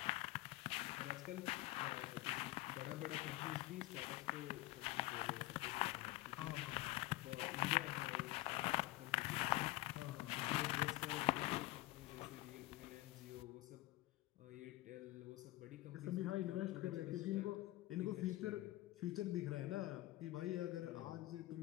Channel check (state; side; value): quieter; right; 18.5 dB